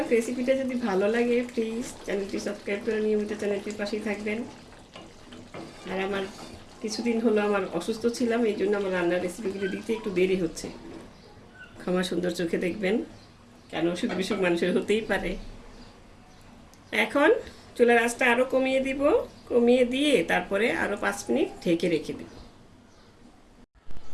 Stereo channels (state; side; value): identical; both; correlation 1.00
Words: রেসিপিটা যদি ভালো লাগে প্লিজ চ্যানেলটি সাবস্ক্রাইব করে নিয়মিত চ্যানেলটির পাশেই থাকবেন। আর আমার কিছুদিন হলো আমার অসুস্থ ছিলাম, এই জন্য আমার রান্নার রেসিপিগুলো দিতে একটু দেরি হচ্ছে, ক্ষমা সুন্দর চোখে দেখবেন, কেন অসুখ বিসুখ মানুষের হতেই পারে। এখন চুলার আঁচটা আরও কমিয়ে দিব, কমিয়ে দিয়ে তারপরে আরও 5 মিনিট ঢেকে রেখে দেব।